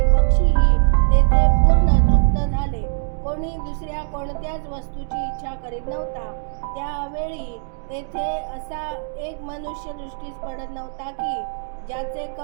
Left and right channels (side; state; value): left; silent; digital silence